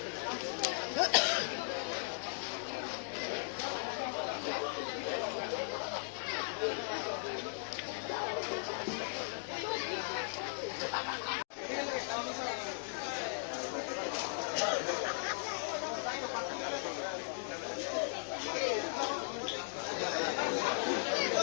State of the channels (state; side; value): silent; right; digital silence